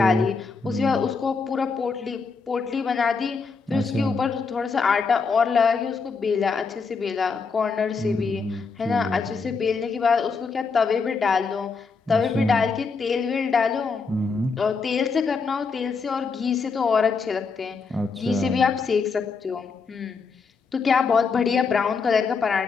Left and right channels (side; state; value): right; quieter; 4.9 dB